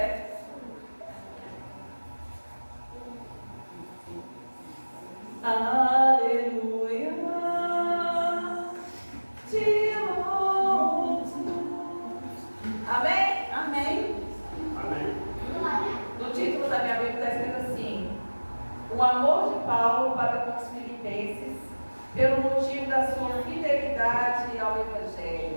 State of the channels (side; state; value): both; inverted; correlation -1.00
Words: Aleluia, te louvo. Amém? Amém. No título da minha Bíblia está escrito assim: o amor de Paulo para com os filipenses, pelo motivo da sua fidelidade ao